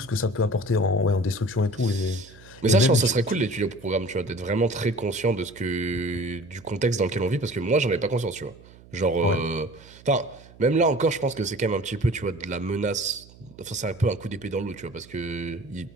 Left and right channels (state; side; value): noise; right; hum, 23 dB below the sound